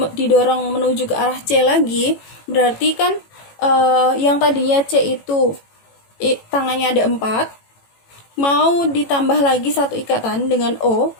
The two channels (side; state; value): right; late; 18 ms